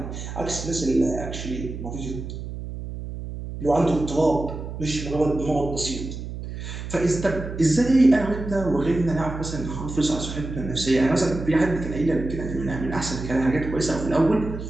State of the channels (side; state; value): right; noise; hum, 8 dB below the sound